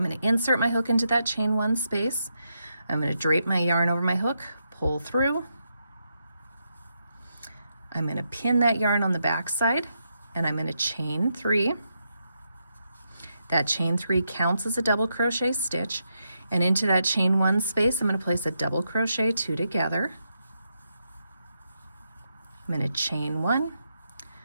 going to insert my hook into that chain 1 space. I'm going to drape my yarn over my hook, pull through. I'm going to pin that yarn on the back side, and I'm going to chain 3. That chain 3 counts as a double crochet stitch, and into that chain 1 space I'm going to place a double crochet 2 together. I'm going to chain 1.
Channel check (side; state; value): both; inverted; correlation -0.83